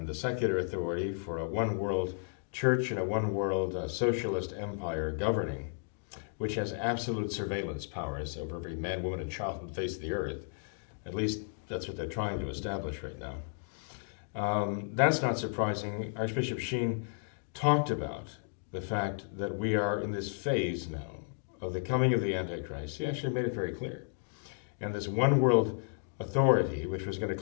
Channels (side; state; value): right; silent; digital silence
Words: the secular authority for a one world church in a one-world socialist empire governing, which has absolute surveillance powers over every man, woman, and child on the face of the earth. At least that's what they're trying to establish right now. That's not surprising. Archbishop Sheen talked about the fact that we are in this phase now of the coming of the Antichrist. He actually made it very clear. And this one world authority, which was going